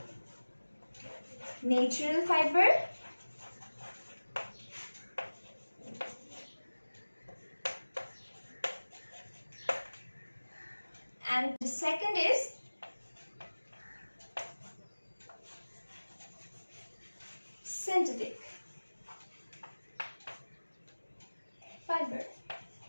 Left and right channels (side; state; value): both; inverted; correlation -1.00